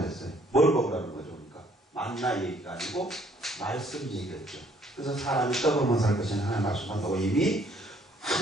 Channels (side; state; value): both; normal; correlation 0.63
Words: 뭘 먹으라는 거죠? 그러니까 만나 얘기가 아니고 말씀 얘기했죠. 그래서 사람이 떡으로만 살 것이냐 하나님 말씀한다고 이미